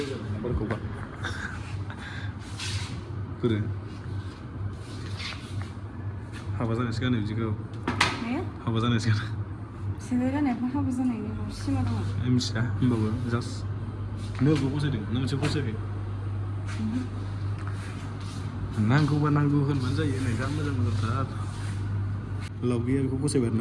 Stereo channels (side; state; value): both; identical; correlation 1.00